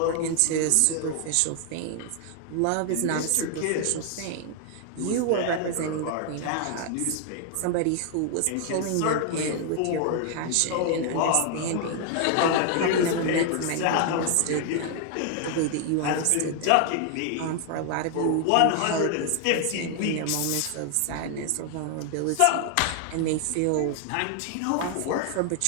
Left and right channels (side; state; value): both; different; correlation 0.00